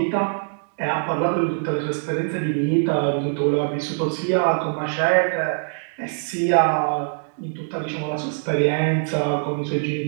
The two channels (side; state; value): left; silent; digital silence